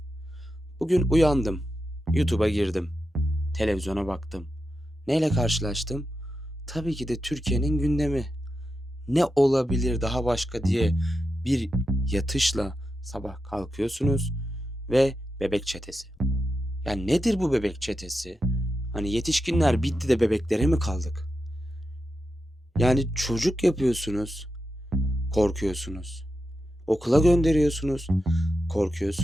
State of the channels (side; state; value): both; normal; correlation 0.88